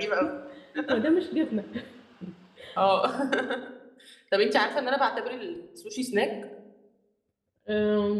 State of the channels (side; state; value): both; identical; correlation 1.00